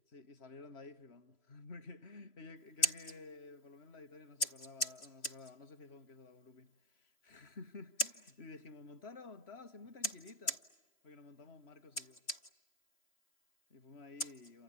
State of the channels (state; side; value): late; right; 3.0 ms